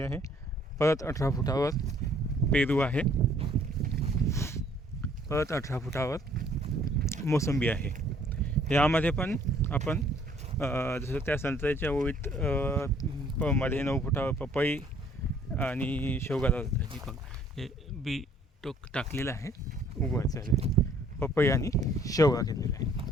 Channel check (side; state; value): both; normal; correlation 0.60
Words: आहे. परत 18 फुटावर पेरू आहे. परत 18 फुटावर मोसंबी आहे. यामध्ये पण आपण जसं त्या संत्र्याच्या ओळीत मध्ये 9 फुटावर पपई आणि शेवगा लावतात. हे बी टाकलेलं आहे, उगवायचं आहे. पपई आणि शेवगा घेतलेला आहे.